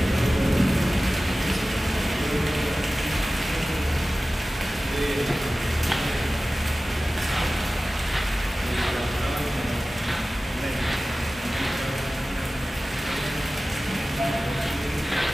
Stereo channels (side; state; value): both; normal; correlation 0.96